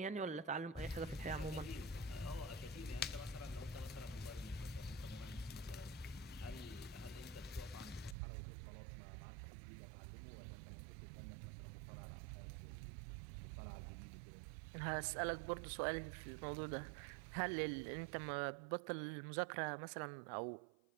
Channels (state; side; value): drops out; left; at 8.2 s